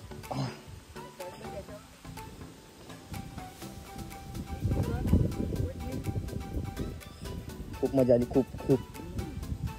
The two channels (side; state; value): both; identical; correlation 1.00